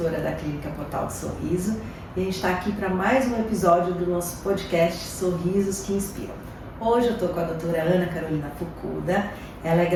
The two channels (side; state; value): both; identical; correlation 1.00